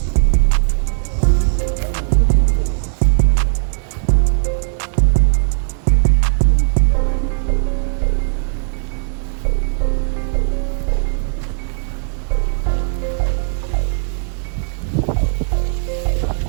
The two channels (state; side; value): silent; left; 59 dB below the other